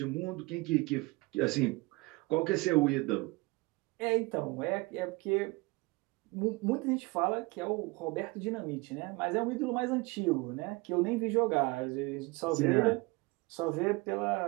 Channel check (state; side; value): quieter; left; 24.5 dB